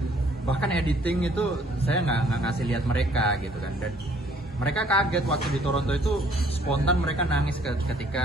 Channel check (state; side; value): normal; both; correlation 0.61